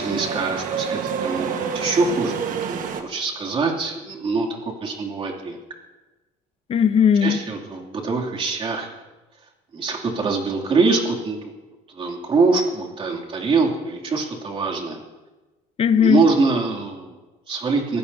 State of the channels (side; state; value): both; normal; correlation 0.58